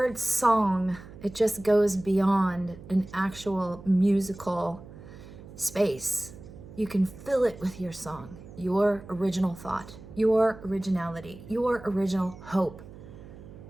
song, it just goes beyond an actual musical space. You can fill it with your song, your original thought, your originality, your original hope,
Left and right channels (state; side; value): noise; right; hum, 17 dB below the sound